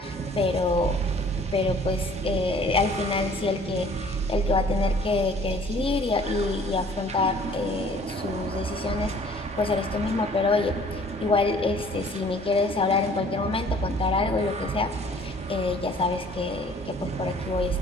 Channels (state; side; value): normal; both; correlation 0.54